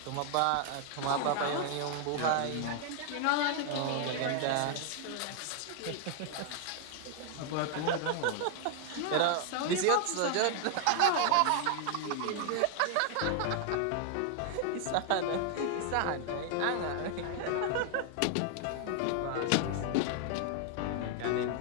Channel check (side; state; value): both; different; correlation 0.00